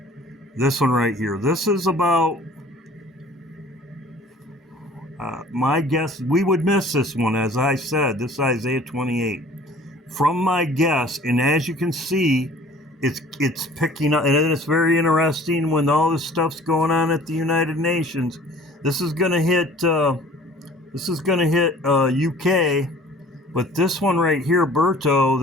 This one right here. This is about... my guess, we would miss this one, as I said. This is Isaiah 28. From my guess, and as you can see, it's picking up, and it's very interesting when all this stuff's going on at the United Nations. This is going to hit. UK, but this one right here, Berto,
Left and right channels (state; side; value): normal; both; correlation 0.49